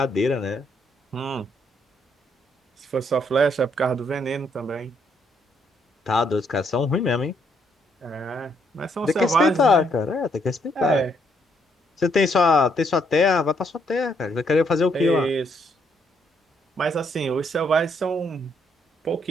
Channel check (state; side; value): normal; both; correlation 0.72